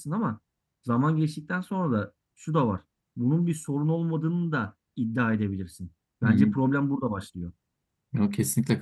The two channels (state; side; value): identical; both; correlation 1.00